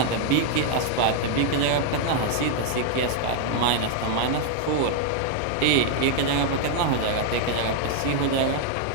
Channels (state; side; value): different; both; correlation 0.00